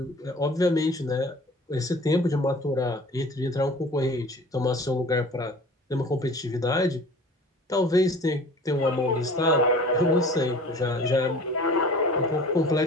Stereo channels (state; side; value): normal; both; correlation 0.44